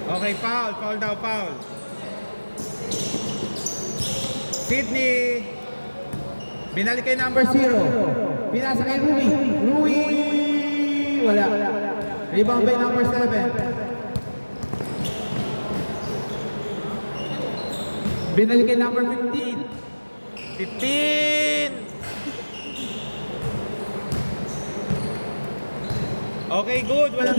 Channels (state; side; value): inverted; both; correlation -1.00